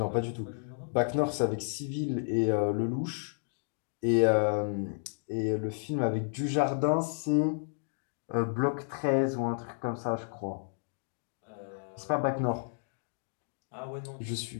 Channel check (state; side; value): silent; right; digital silence